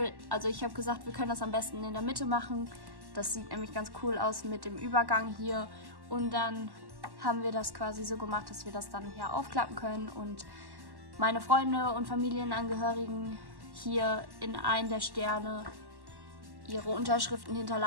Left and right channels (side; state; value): left; late; 1.1 ms